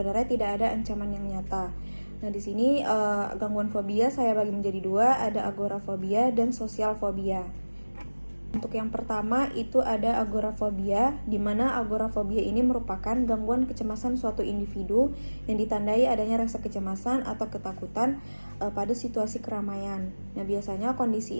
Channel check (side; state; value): both; inverted; correlation -1.00